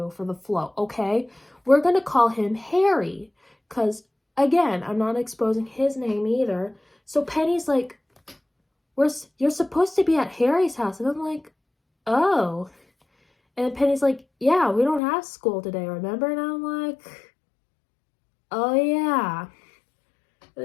for the float, okay? We're gonna call him Harry, because, again, I'm not exposing his name either. So Penny's like, you're supposed to be at Harry's house. And I'm like, oh. And Penny's like, yeah, we don't have school today, remember? And I'm like, oh yeah.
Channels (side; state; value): right; drops out; at 15.0 s